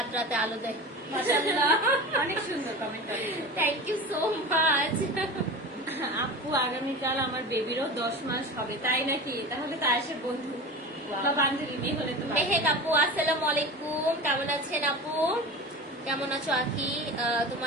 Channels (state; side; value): normal; both; correlation 0.31